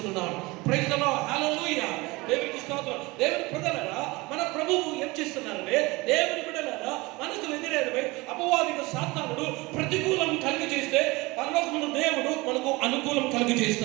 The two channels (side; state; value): left; quieter; 23.1 dB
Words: ప్రైజ్ ది లార్డ్, హల్లెలూయా. దేవునికి స్తోత్రం. దేవుని ప్రజలారా, మన ప్రభువు ఏం చేస్తున్నారంటే, దేవుని బిడ్డలారా మనకు వ్యతిరేకమై అపవాదిక సాతానుడు ప్రతికూలం కలిగి చేస్తే పరలోకమున దేవుడు మనకు అనుకూలం కలిగి